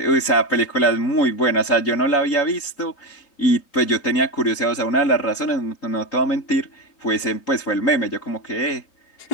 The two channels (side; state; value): right; late; 3.8 ms